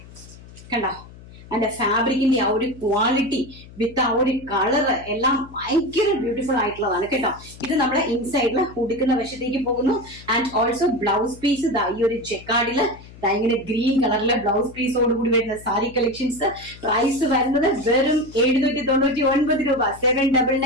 കണ്ടോ അതിന്റെ ഫാബ്രിക്കിന്റെ ആ ഒരു ക്വാളിറ്റി വിത്ത് ആ ഒരു കളറ് എല്ലാം ഭയങ്കര ബ്യൂട്ടിഫുൾ ആയിട്ടുള്ളതാണ് കേട്ടോ. ഇത് നമ്മുടെ ഇൻസൈഡില് ഉടുക്കുന്ന വശത്തേക്ക് പോകുന്നു. ആൻഡ് ഓൾസോ ബ്ലൗസ് പീസ് ഈ ഒരു ജക്കാർഡില് ഇങ്ങനെ ഗ്രീൻ കളറിലെ ബ്ലൗസ് പീസോട് കൂടി വരുന്ന സാരി കളക്ഷൻസ്. പ്രൈസ് വരുന്നത് വെറും 799 രൂപ.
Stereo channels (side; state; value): left; noise; hum, 19 dB below the sound